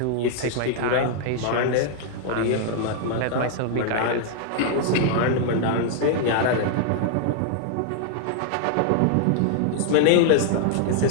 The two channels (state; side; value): different; both; correlation -0.01